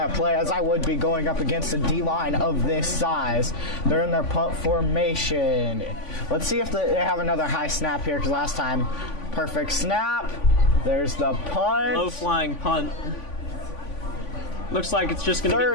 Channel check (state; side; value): late; right; 3.5 ms